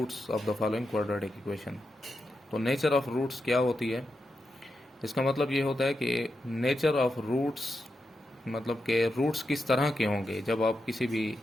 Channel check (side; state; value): both; normal; correlation 0.87